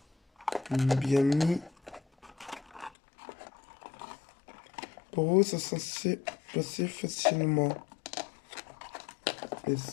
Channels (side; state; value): right; drops out; at 2.9 s